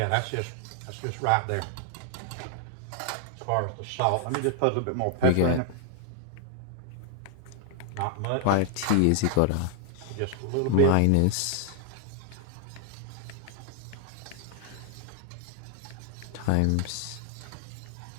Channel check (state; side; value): different; both; correlation 0.00